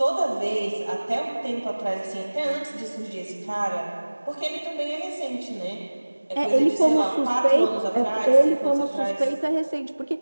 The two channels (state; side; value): inverted; both; correlation -1.00